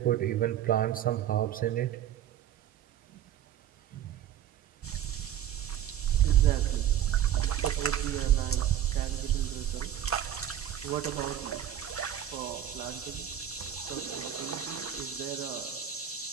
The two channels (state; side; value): quieter; left; 10.7 dB